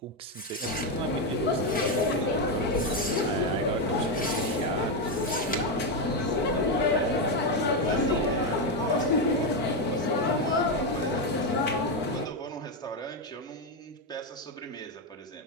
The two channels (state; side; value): normal; both; correlation 0.07